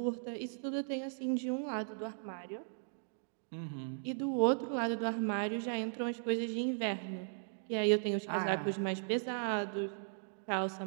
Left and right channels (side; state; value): left; silent; digital silence